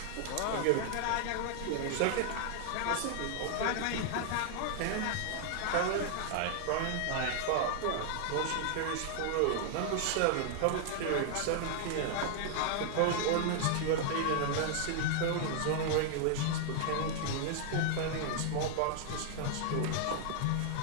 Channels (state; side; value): different; both; correlation -0.01